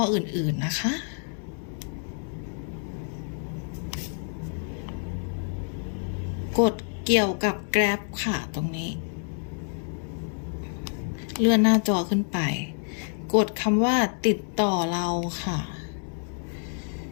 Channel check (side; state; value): right; silent; 60 dB below the other